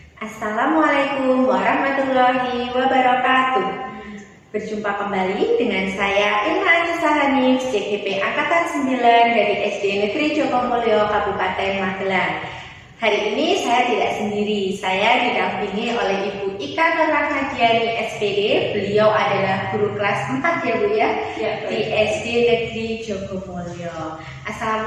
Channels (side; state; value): both; identical; correlation 1.00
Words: Assalamualaikum warahmatullahi wabarakatuh. Berjumpa kembali dengan saya Irma Anissa Hanif, CGP Angkatan 9 dari SD Negeri Jokomulyo, Kabupaten Magelang. Hari ini saya tidak sendiri, saya didampingi oleh Ibu Ika Nurrahmadiani SPD. Beliau adalah guru kelas 4 ya Bu ya, di SD Negeri Jokomulyo.